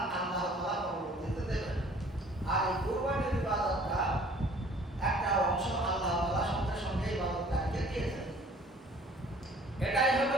আল্লাহ তাআলা পরবর্তীতে দেবেন। আর এই কুরবানির ইবাদতটা একটা অংশ আল্লাহ তাআলা সঙ্গে সঙ্গে ইবাদতকারীকে দিয়েছেন। এটাই হলো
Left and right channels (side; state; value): both; normal; correlation 0.53